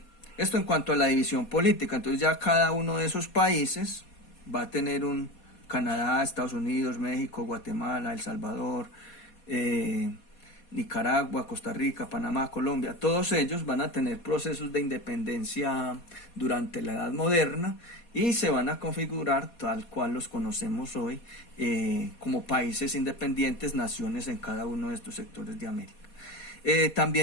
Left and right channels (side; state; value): right; late; 4.2 ms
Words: en cuanto a la división política. Entonces ya cada uno de esos países va a tener un Canadá, Estados Unidos, México, Guatemala, El Salvador, Nicaragua, Costa Rica, Panamá, Colombia. Todos ellos van a tener procesos de independencia durante la Edad Moderna y se van a configurar tal cual los conocemos hoy como países independientes, naciones en cada uno de estos sectores de América.